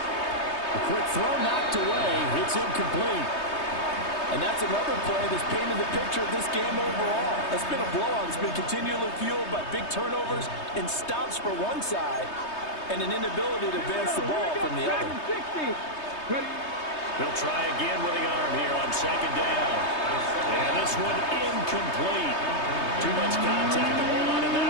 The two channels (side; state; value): right; late; 3.2 ms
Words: A quick throw knocked away. It's incomplete. And that's another play that's painted the picture of this game overall. It's been a blowout. It's been continually fueled by big turnovers and stops for one side and an inability to advance the ball from the other. He'll try again with the arm here on second down. And this one incomplete. Too much contact to hold on to